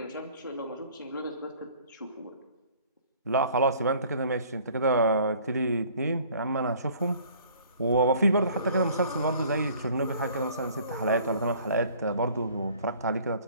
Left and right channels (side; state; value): both; inverted; correlation -0.54